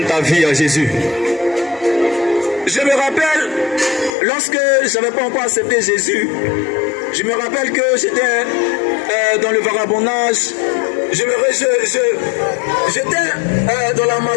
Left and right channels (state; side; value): drops out; right; at 4.1 s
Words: ta vie à Jésus. Je me rappelle, lorsque je n'avais pas encore accepté Jésus, je me rappelle que j'étais dans le vagabondage, j'étais dans la